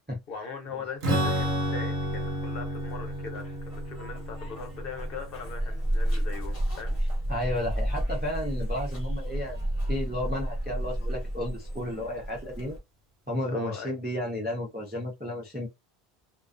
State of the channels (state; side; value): normal; both; correlation 0.64